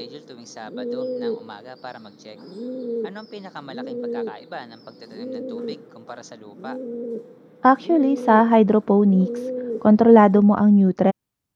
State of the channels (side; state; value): both; identical; correlation 1.00